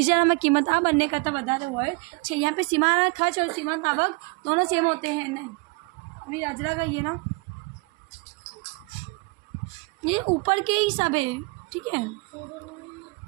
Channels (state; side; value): quieter; left; 28.5 dB